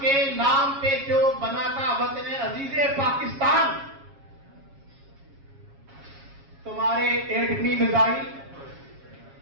نام پہ جو بنا تھا وطن عزیز پاکستان، تمہارے ایٹمی میزائل،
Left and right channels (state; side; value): late; left; 7.3 ms